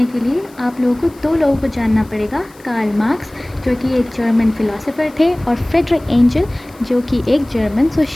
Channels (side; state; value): left; noise; hiss, 27 dB below the sound